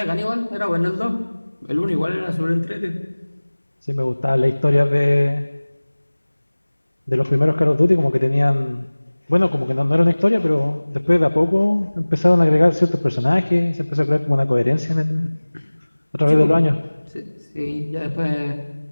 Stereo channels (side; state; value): both; inverted; correlation -1.00